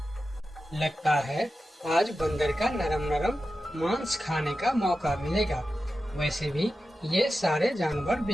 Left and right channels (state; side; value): normal; both; correlation 0.92